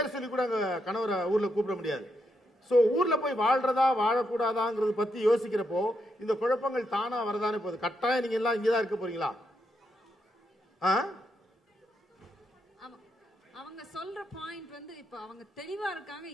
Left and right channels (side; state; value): both; normal; correlation 0.81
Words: சொல்லி கூட அங்க கணவரை ஊர்ல கூப்பிட முடியாது. சோ ஊர்ல போய் வாழ்றதா வாழக்கூடாதாங்கிறது பத்தி யோசிக்கிறப்போ இந்த குழப்பங்கள் தானா வரதானே போகுது. கட்டாயம் நீங்க எல்லாம் இங்கதான் இருக்க போறீங்களா? அவங்க சொல்ற பாயிண்ட் வந்து இப்ப அவங்க தெளிவா இருக்காங்க